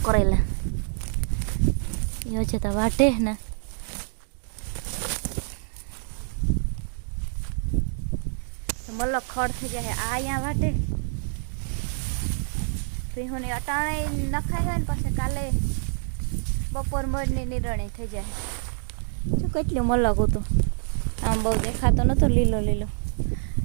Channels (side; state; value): left; silent; 61 dB below the other